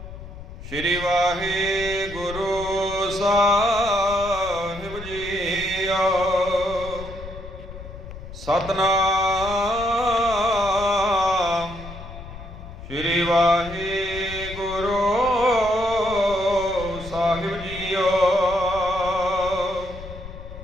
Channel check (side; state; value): left; noise; rumble, 13 dB below the sound